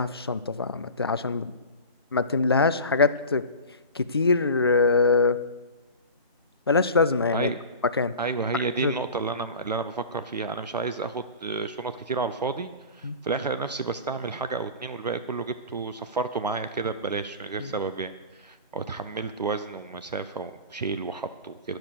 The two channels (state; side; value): inverted; both; correlation -0.34